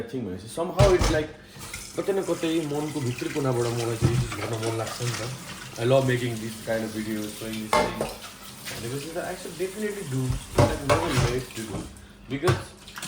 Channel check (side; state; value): both; identical; correlation 1.00